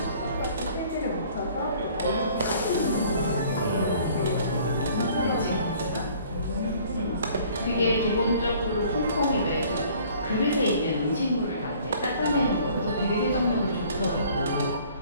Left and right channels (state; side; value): inverted; both; correlation -0.55